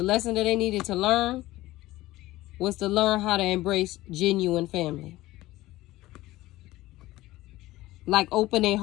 they needed to learn was to learn how to embrace genuine family. Like open their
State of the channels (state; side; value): quieter; right; 17.4 dB